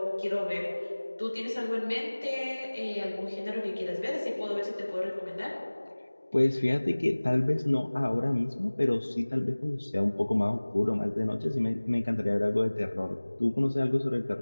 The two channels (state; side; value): inverted; both; correlation -1.00